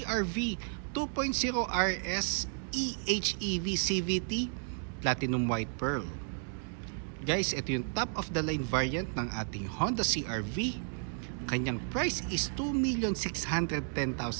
2.0 RS eHEV CVT Platinum White Pearl. Guys, ito yung top of the line variant ng ating Honda CR-V. Kanyang price is 2,610,000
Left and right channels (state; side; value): silent; left; 56 dB below the other